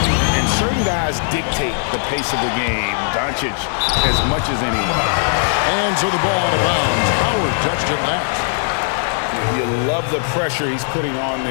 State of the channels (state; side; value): silent; right; digital silence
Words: And certain guys dictate the pace of the game. Doncic as much as anyone. And so the ball out of bounds. Howard touched it last. You love the pressure he's putting on